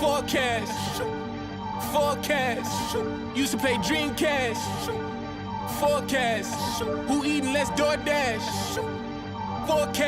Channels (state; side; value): identical; both; correlation 1.00